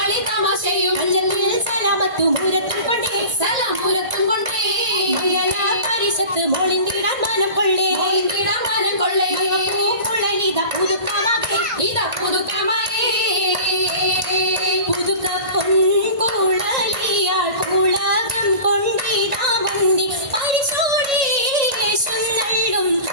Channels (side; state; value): left; late; 1.8 ms